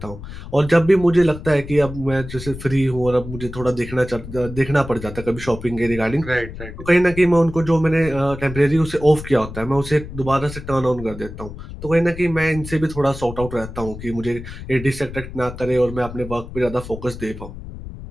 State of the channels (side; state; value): left; noise; rumble, 12 dB below the sound